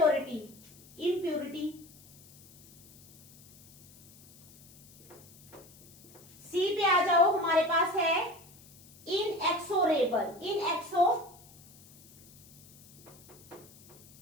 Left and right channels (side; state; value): left; noise; hiss, 24 dB below the sound